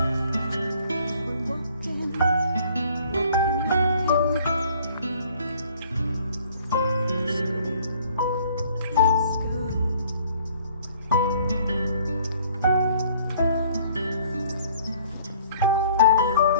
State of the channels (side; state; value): both; inverted; correlation -0.57